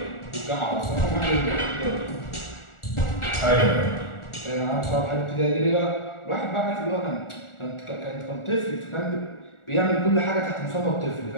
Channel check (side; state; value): right; late; 1.4 ms